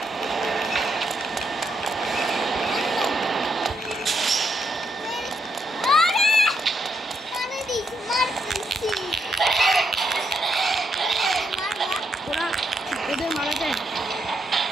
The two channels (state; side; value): normal; both; correlation 0.78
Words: ওদের মারা যায়।